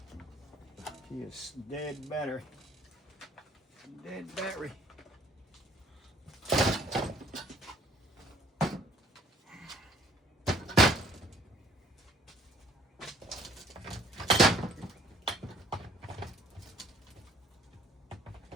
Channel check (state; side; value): normal; both; correlation 0.57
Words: he is dead battery. Dead battery.